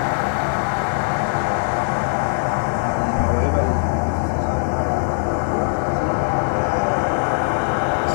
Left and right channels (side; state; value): right; silent; 65 dB below the other